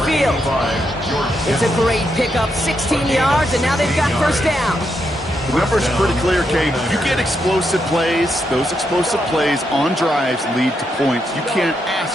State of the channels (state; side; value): normal; both; correlation 0.81